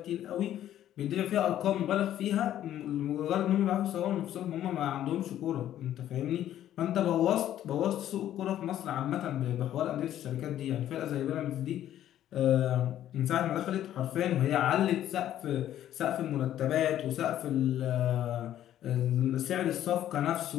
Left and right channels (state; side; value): quieter; right; 11.8 dB